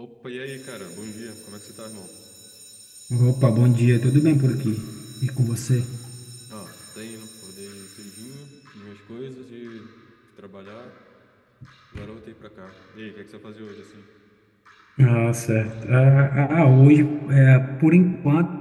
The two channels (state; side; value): identical; both; correlation 1.00